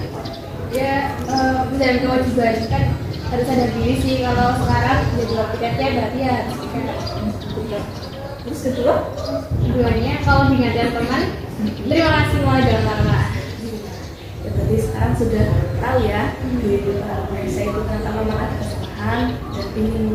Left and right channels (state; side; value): identical; both; correlation 1.00